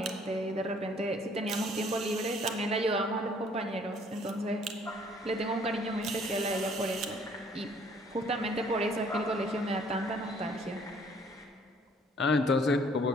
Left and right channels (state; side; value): normal; both; correlation 0.60